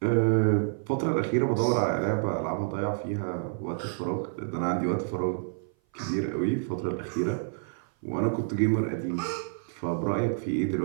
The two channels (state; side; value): silent; left; 56 dB below the other